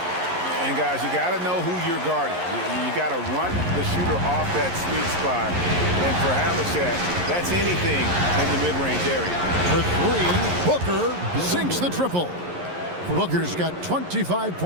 guys, you got to know who you're guarding. You got to run the shooter off that sweet spot. And for Havlicek, that's anything in the mid-range area. For 3, Booker sinks the triple. Booker's got 25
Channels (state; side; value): late; left; 11 ms